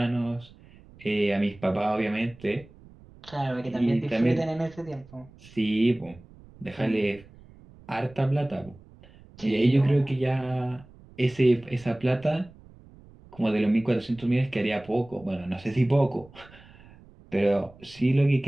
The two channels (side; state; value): right; noise; rumble, 23 dB below the sound